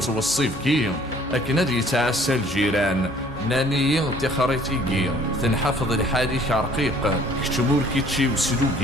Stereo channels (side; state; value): left; noise; hum, 19 dB below the sound